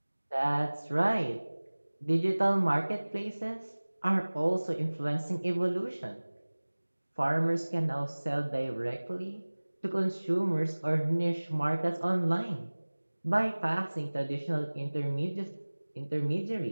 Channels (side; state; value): both; inverted; correlation -1.00